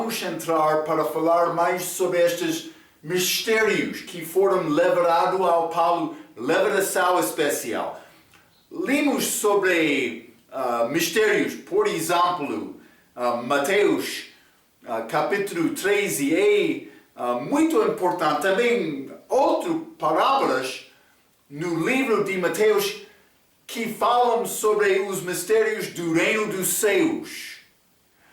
entrar para falar mais sobre estes mistérios que foram levados ao Paulo, revelação especial. Lemos sobre mistérios, por exemplo, Mateus capítulo 13, muito importante. Também outras parábolas no livro de Mateus que falam sobre os mistérios do reino dos céus.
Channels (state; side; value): identical; both; correlation 1.00